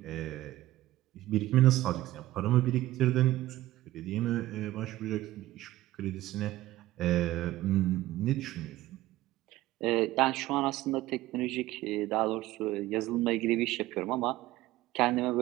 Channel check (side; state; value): left; quieter; 16.2 dB